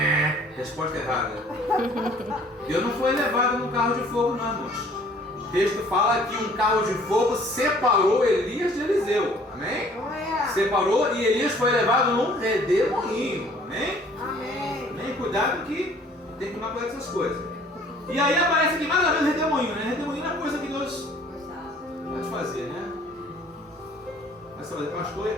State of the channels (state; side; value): normal; both; correlation 0.55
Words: Resposta errada. Deus não foi levado no carro de fogo não, irmãos. O texto fala que um carro de fogo separou Elias de Eliseu. Amém? Separou e Elias foi levado num redemoinho. Amém? Amém? Cuidado que tem que tomar cuidado com essas coisas. E aí aparece aqui mais uma vez redemoinho, né? Redemoinho é coisa que Deus pode fazer, né? Aí você vai dizer, pastor, e